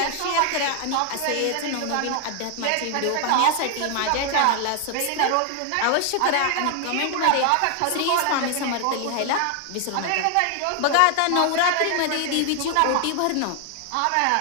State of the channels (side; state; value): both; different; correlation 0.00